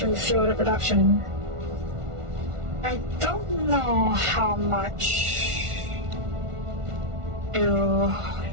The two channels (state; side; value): late; left; 1.4 ms